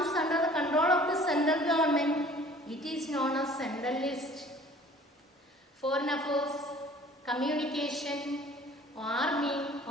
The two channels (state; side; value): normal; both; correlation 0.50